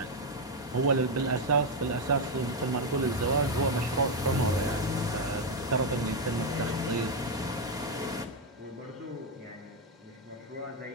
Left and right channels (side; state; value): both; normal; correlation 0.04